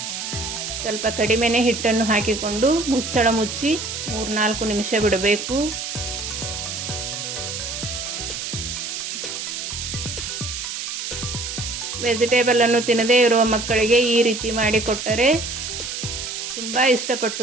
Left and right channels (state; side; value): noise; right; hiss, 5 dB below the sound